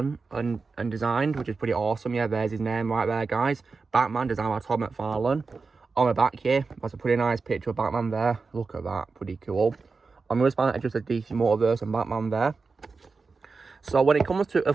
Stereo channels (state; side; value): quieter; left; 4.4 dB